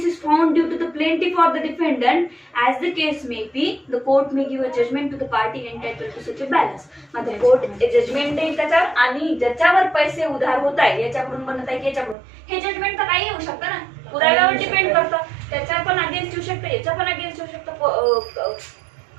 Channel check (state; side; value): drops out; left; at 12.2 s